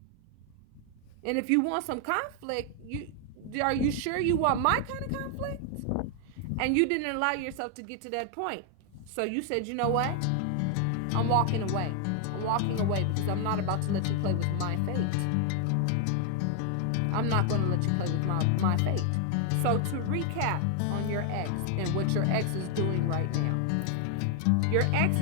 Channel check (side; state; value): both; different; correlation 0.00